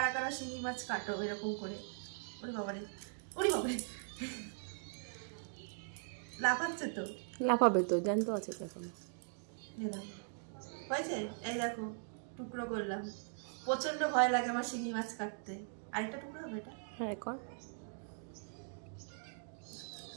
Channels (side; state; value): left; silent; digital silence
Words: কারা শিঙি মাছ কাটো এরকম করে? ওরে বাবারে, ওরে বাবারে, লাফাচ্ছে তো। লাফাবে তো, জ্যান্ত আছে তো এখন। হয়েছে, এই দেখো টুকরো করলাম। প্রচন্ড ভয় লাগে আমার শিঙি মাছ কাটতে। আরেকটা টুকরো হবে এটা। হ্যাঁ কর।